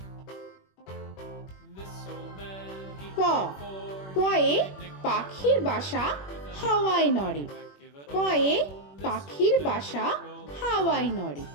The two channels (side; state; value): right; late; 21 ms